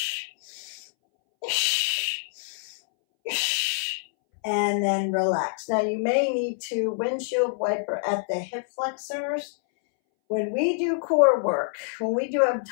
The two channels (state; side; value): silent; right; 61 dB below the other